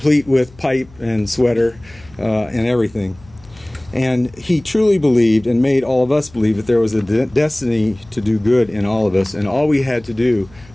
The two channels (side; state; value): left; noise; hum, 25 dB below the sound